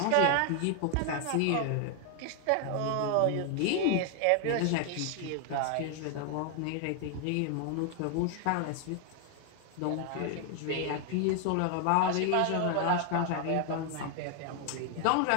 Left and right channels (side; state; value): both; different; correlation 0.00